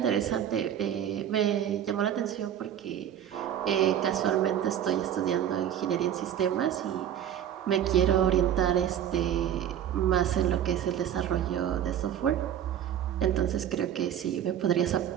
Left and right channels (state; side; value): quieter; left; 10.1 dB